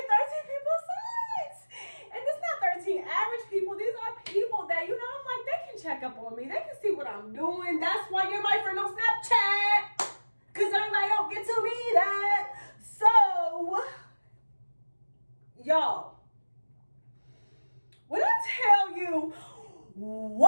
13 people saw it. And it's not 13 average people. These are people that, you know, I'm like, they can check up on me. They can see what I'm doing. That's why you're my friend on Snapchat. Because everybody don't get to be that. So, y'all, when I tell you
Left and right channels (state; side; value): inverted; both; correlation -1.00